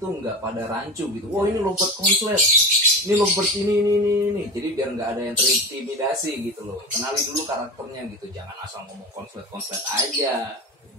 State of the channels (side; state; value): both; normal; correlation 0.27